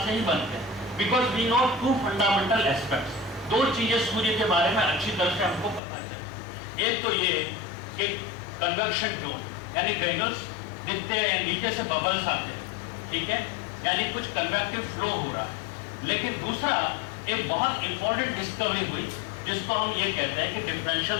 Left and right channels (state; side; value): drops out; right; at 5.8 s